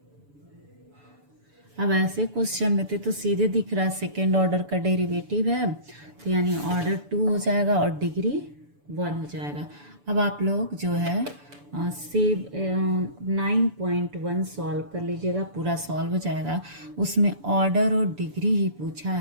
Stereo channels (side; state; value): left; late; 6.9 ms